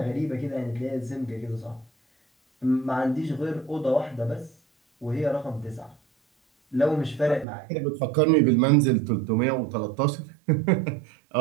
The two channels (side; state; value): left; drops out; at 7.5 s